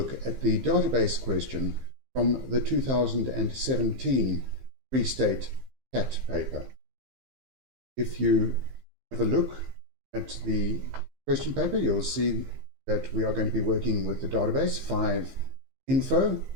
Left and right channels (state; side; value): late; left; 15 ms